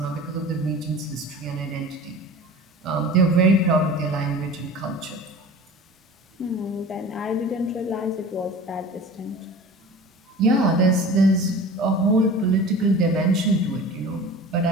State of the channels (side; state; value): both; normal; correlation 0.39